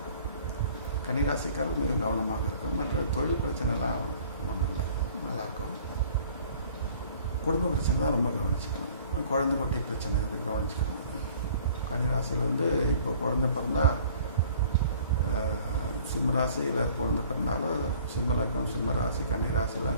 கன்னிராசிக்காரர்கள் மிக கவனமாக இருக்கும். மற்ற தொழில் பிரச்சனைலாம் ஒன்றும் இல்லை, நல்லாயிருக்கும். குடும்ப பிரச்சனை தான் ரொம்ப கவனிச்சுக்கணும். குழந்தை குட்டி பிரச்சனை வந்து கவனிச்சுக்கணும். கன்னிராசியில் வந்து இப்போ குழந்தை பிறந்தால், சிம்மராசியில் குழந்தை பிறந்தாலும், சிம்ம லக்னம், சிம்ம ராசி,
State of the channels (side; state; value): both; inverted; correlation -0.53